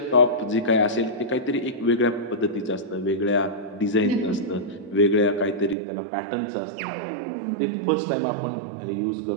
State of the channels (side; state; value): left; drops out; at 5.8 s